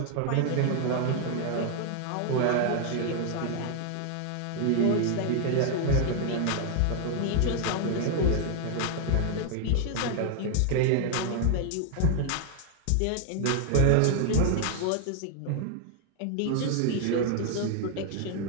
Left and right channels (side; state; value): both; different; correlation 0.00